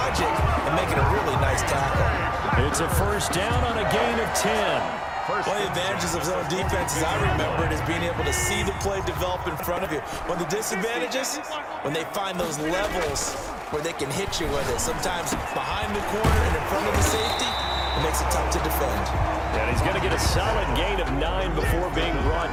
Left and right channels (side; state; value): both; identical; correlation 1.00